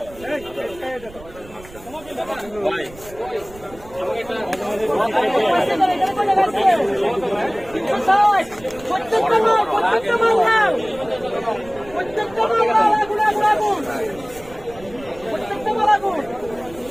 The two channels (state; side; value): noise; right; rumble, 20 dB below the sound